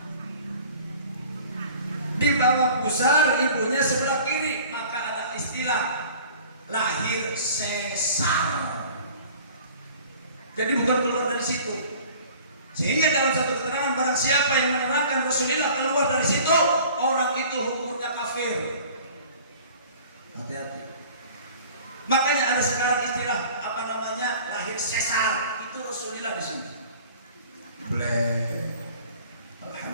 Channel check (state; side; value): inverted; both; correlation -0.47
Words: Di bawah pusar ibunya sebelah kiri, maka ada istilah lahir sesar. Jadi bukan keluar dari situ. Sehingga dalam satu keterangan, barang siapa yang menerangkan Rasulullah keluar dari situ, orang itu hukumnya kafir. Hati-hati. Makanya ada sekarang istilah apa namanya lahir sesar, itu Rasulullah di sini.